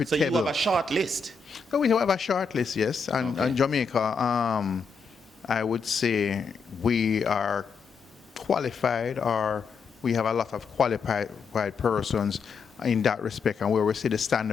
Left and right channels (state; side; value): quieter; right; 5.1 dB